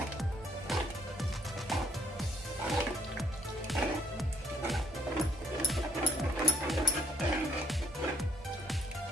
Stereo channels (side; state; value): both; normal; correlation 0.69